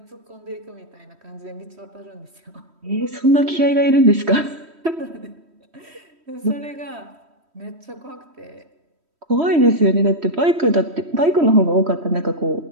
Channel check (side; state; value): left; late; 3.1 ms